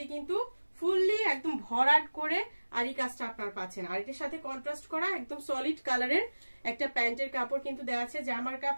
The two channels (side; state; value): both; inverted; correlation -1.00